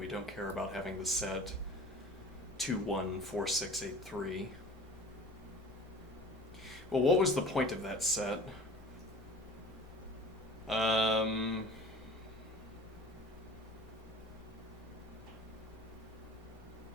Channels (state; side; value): normal; both; correlation 0.43